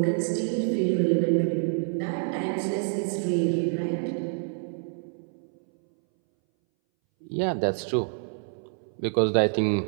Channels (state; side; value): silent; left; 60 dB below the other